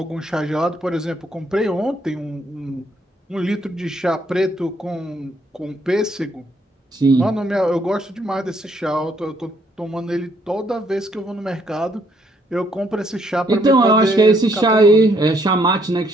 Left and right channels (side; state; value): both; normal; correlation 0.69